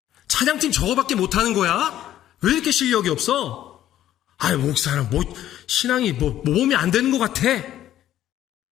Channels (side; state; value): right; quieter; 12.3 dB